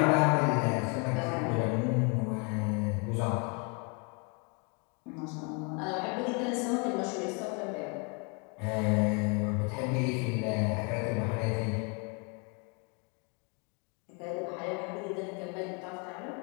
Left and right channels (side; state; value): right; quieter; 34.4 dB